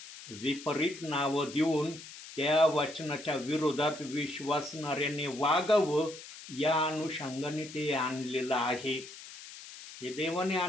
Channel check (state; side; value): noise; left; hiss, 15 dB below the sound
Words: विपरीत नावं देऊन त्या वचनाच्या विरोधात विश्वासणाऱ्याने वागावं, या अनुषंगाने ते आणलेलं आहे. हे देवाने